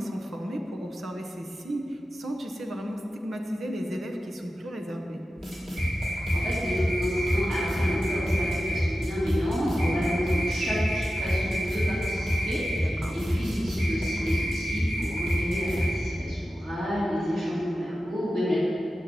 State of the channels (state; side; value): normal; both; correlation 0.93